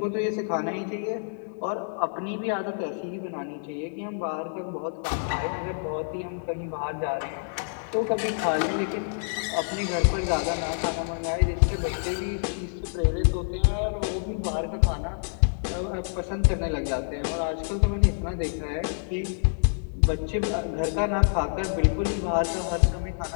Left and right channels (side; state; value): right; silent; digital silence